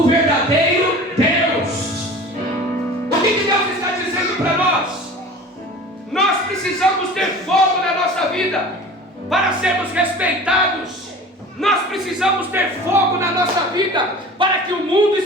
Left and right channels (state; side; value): normal; both; correlation 0.40